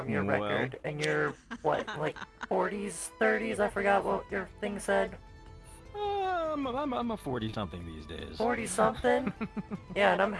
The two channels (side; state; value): both; identical; correlation 1.00